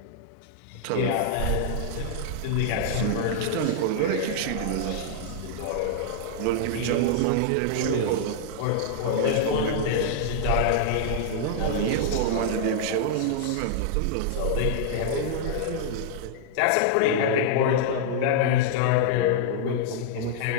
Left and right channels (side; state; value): both; different; correlation -0.01